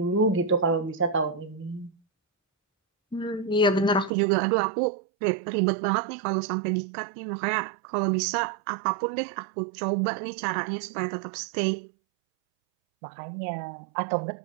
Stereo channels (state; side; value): drops out; left; at 4.1 s